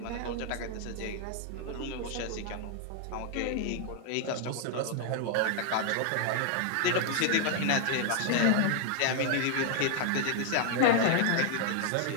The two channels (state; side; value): different; both; correlation 0.00